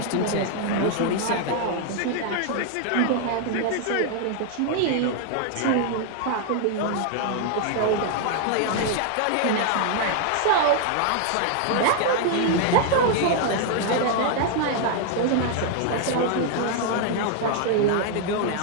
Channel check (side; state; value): both; different; correlation 0.00